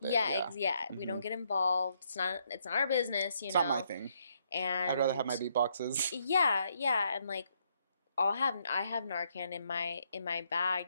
it. Yeah, Yeah. yeah. We don't get involved. It's not our business, It's not my thing. I'd rather have And my beatboxes. yeah, yeah, and like I have Narcan in my bag,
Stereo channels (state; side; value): inverted; both; correlation -0.74